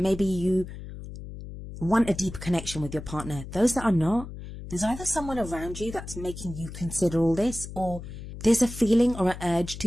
you want a deeper connection with your partner. Those that are not, there's either someone around you that's making you consider all this, or there's a feeling or an urge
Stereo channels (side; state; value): left; noise; hum, 11 dB below the sound